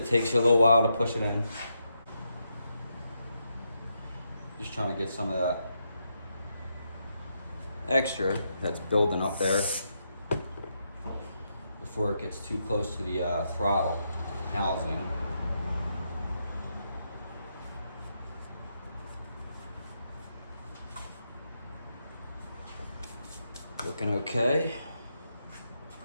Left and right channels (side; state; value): both; inverted; correlation -0.81